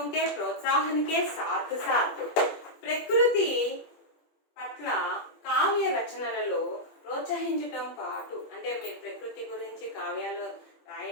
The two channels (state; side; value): late; right; 21 ms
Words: के प्रोत्साहन के साथ साथ ప్రకృతి పట్ల కావ్య రచనలలో ప్రోత్సహించడం పాటు, అంటే మీరు ప్రకృతి గురించి కావ్యాలు